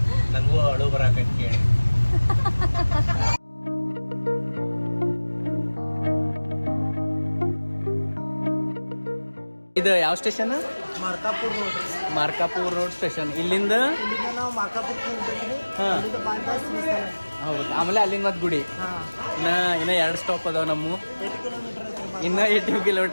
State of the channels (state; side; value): inverted; both; correlation -1.00